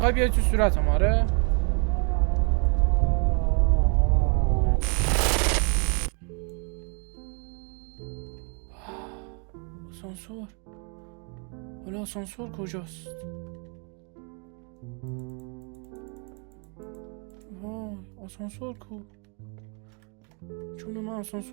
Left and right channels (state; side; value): quieter; left; 37.3 dB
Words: بیای تو صورتم. آره آسانسور. حالا آسانسور کجاست؟ وای آسانسور کو؟ چون من